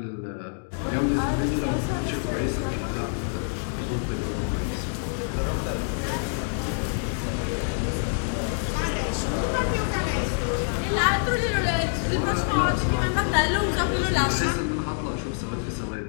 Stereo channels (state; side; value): silent; right; digital silence